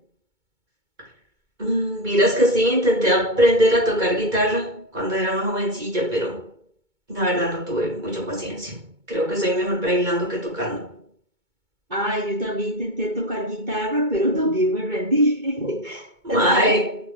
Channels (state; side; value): late; left; 2.2 ms